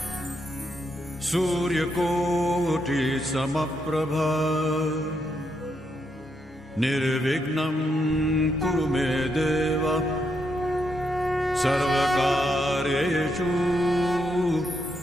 सूर्यकोटि समप्रभ निर्विघ्नं कुरु मे देव सर्वकार्येषु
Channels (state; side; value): normal; both; correlation 0.80